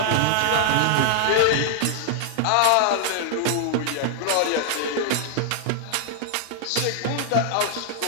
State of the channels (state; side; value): different; both; correlation 0.00